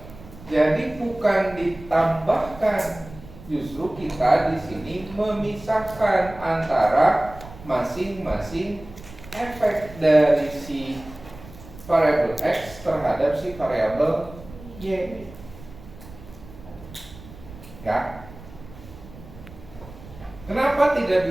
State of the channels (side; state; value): right; noise; rumble, 18 dB below the sound